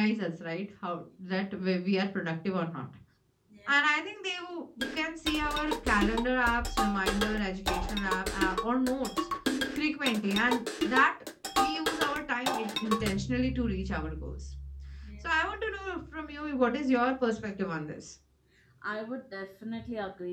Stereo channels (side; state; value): both; identical; correlation 1.00